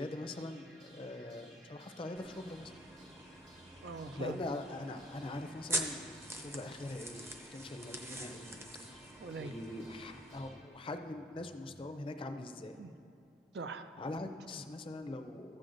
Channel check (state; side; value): normal; both; correlation 0.60